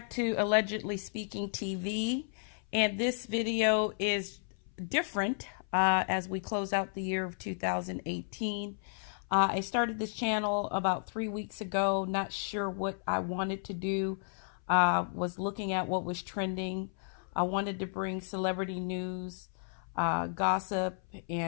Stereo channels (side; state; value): right; silent; 56 dB below the other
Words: to Allegedly Speaking TV. And this video is different as we close out the year of 2018. I started this channel about 3 weeks ago, not sure what I wanted to do. Was looking at what was trending. I wanted to bring celebrity news, gossip,